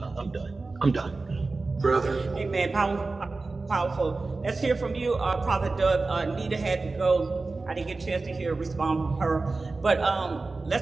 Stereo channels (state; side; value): quieter; left; 3.6 dB